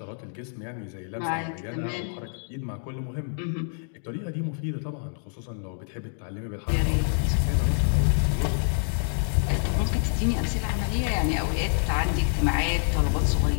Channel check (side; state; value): right; silent; 60 dB below the other